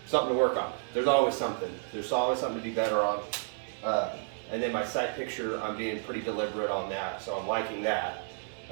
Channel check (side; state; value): left; silent; digital silence